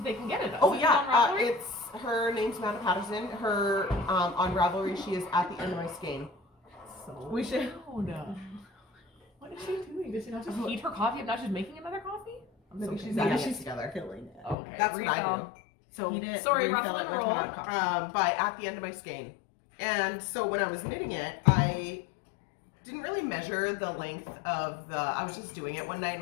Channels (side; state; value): right; drops out; at 14.6 s